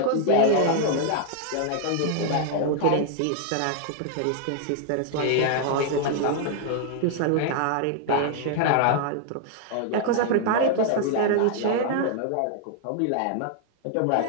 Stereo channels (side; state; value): both; different; correlation 0.00